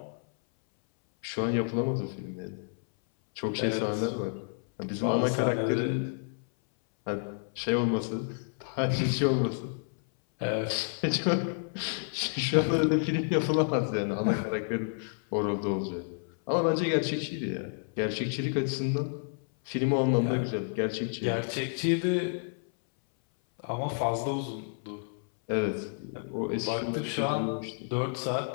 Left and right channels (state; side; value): silent; right; 58 dB below the other